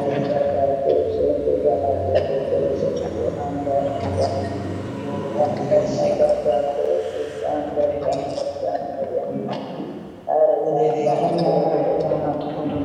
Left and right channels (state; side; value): identical; both; correlation 1.00